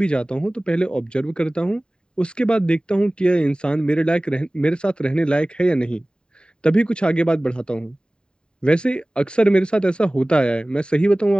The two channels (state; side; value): late; right; 0.049 ms